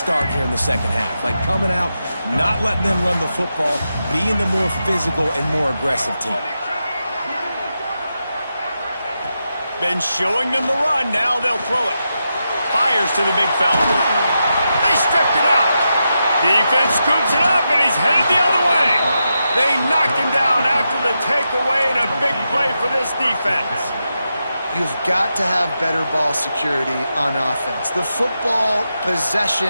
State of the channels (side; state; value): both; inverted; correlation -0.87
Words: here in the second half. Like coming out, not letting them run the football, being the more physical and more aggressive team. Been showing them the run. Now they'll throw it. Fires to the big fella. They stripped it out. Defense scoops it up, and he's headed the other way. They knocked him down after the takeaway, and a big play for this defense. You've got to have better ball security on offense. The football